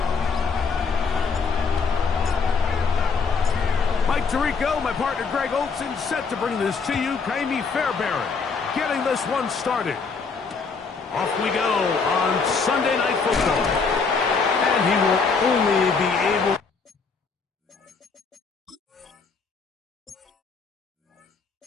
Mike Tirico, my partner Greg Olson, set to bring this to you. Kaimi Fairbairn getting this one started. Off we go on Sunday Night Football. And he will only be able...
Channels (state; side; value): quieter; right; 5.0 dB